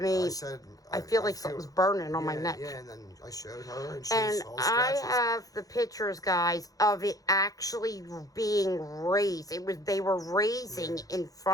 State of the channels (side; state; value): right; late; 0.17 ms